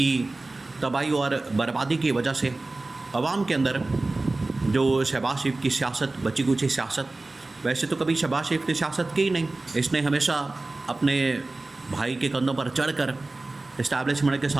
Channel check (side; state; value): left; quieter; 3.1 dB